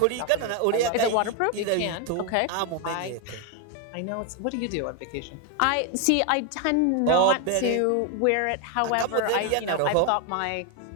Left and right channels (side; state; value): both; different; correlation 0.01